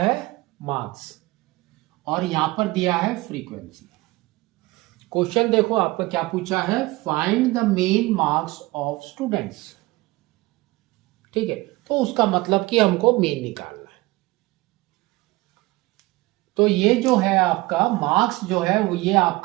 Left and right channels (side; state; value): left; quieter; 21.0 dB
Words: मार्क्स, और यहां पर दिया है फ्रीक्वेंसी। क्वेश्चन देखो आपका क्या पूछा है, find the main marks of students. ठीक है, तो उसका मतलब कि हमको मेन निकालना है। तो ये जो है आपका मार्क्स जो है वो ये